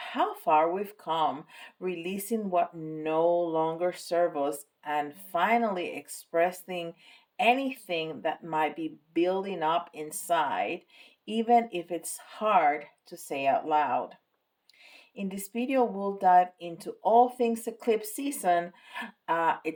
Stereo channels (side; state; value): both; identical; correlation 1.00